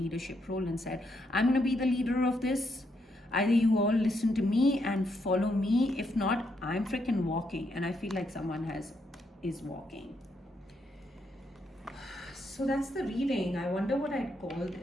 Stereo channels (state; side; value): normal; both; correlation 0.78